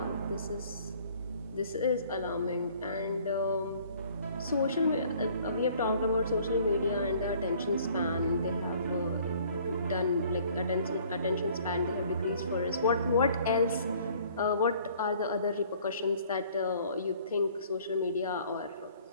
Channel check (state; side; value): inverted; both; correlation -0.56